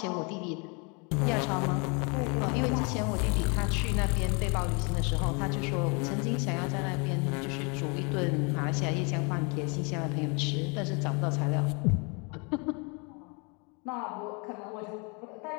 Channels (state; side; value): quieter; right; 32.4 dB